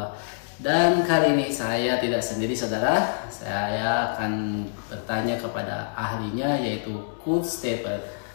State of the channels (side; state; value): right; silent; digital silence